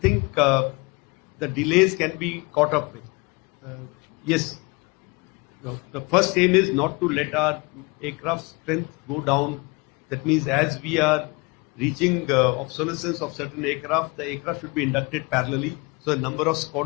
the delays can be caught up with. Yes, the first aim is not to let our aircraft strength go down. That means as we are reaching obsolescence of certain aircraft, the aircraft should be inducted parallelly. So the number of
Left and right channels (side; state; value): right; quieter; 27.3 dB